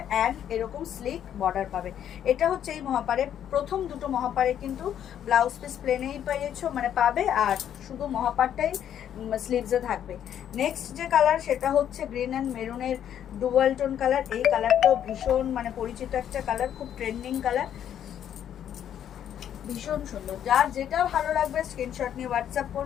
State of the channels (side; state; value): right; quieter; 9.9 dB